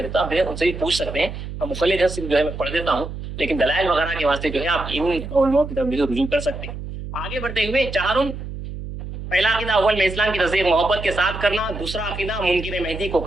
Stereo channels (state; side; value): noise; right; hum, 9 dB below the sound